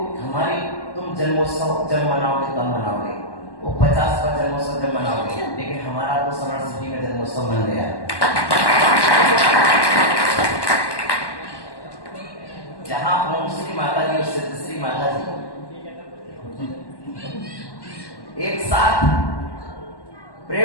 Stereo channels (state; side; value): late; right; 1.1 ms